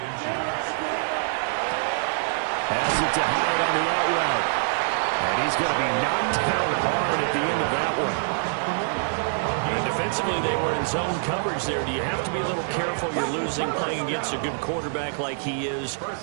Has it to Hyatt on the out route. And he's going to be knocked down hard at the end of that one. And defensively, they were in zone coverage there. Do you have to be a little careful? You're losing playing against a good quarterback like he is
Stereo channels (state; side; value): silent; left; digital silence